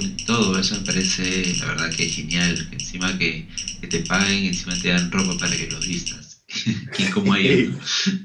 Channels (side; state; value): both; identical; correlation 1.00